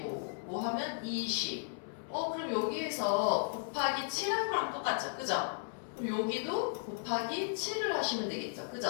5 하면 20. 그럼 여기에서 곱하기 7한 거랑 똑같죠? 그죠? 그럼 여기도 곱하기 7을 하시면 되겠죠?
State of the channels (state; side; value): silent; right; 54 dB below the other